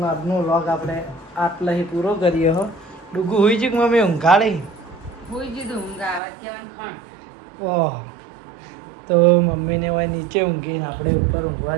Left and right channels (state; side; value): drops out; left; at 6.2 s